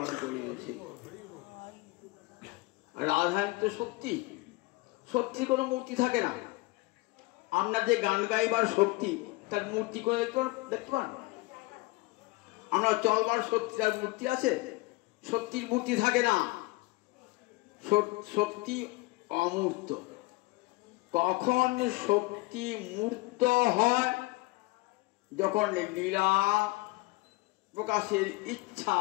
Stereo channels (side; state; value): right; quieter; 22.8 dB